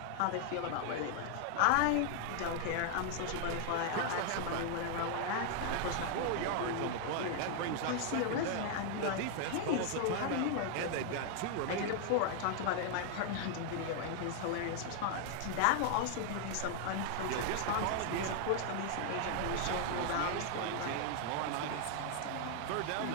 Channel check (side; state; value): both; different; correlation 0.00